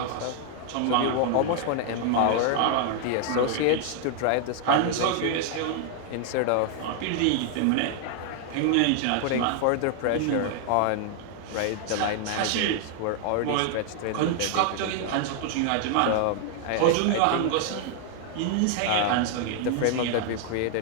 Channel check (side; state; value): both; different; correlation 0.00